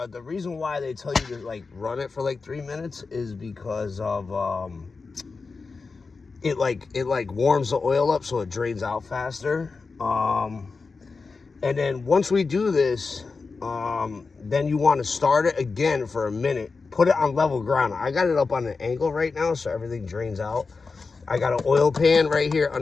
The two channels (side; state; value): right; quieter; 4.4 dB